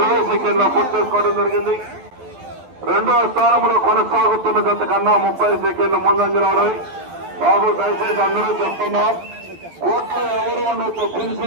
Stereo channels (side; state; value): left; late; 12 ms